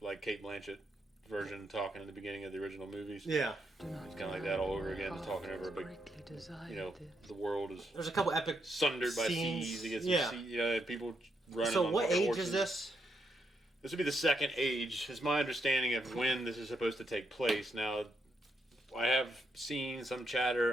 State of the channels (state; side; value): normal; both; correlation 0.79